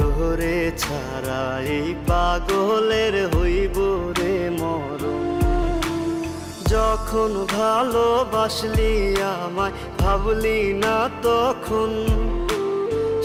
ছাড়া এই পাগলের হইব রে মরণ। যখন ভালোবাসলি আমায় ভাবলি না তখন,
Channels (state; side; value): identical; both; correlation 1.00